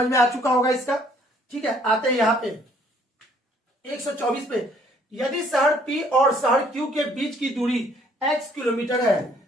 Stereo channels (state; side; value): normal; both; correlation 0.62